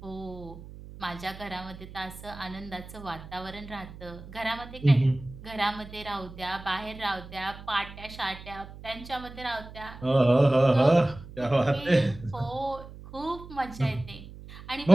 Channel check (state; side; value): noise; right; hum, 15 dB below the sound